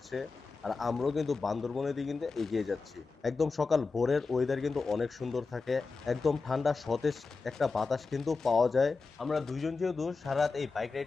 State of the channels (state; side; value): quieter; right; 4.3 dB